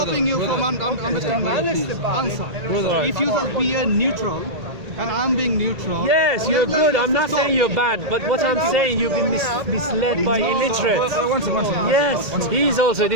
you from understanding. Answer. So if you just be a neutral, and I'm being neutral. Yes, you're good. I'm not saying you're bad, but what I'm saying, you've been misled by illiterate. Yes, he's also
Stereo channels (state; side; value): late; left; 1.8 ms